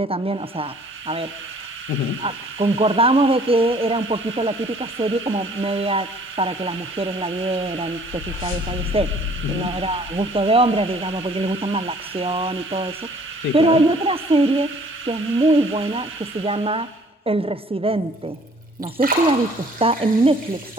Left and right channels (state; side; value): normal; both; correlation 0.56